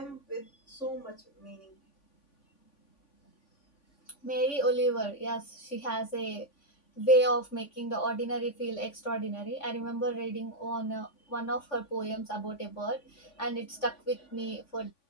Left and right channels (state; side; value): late; right; 3.5 ms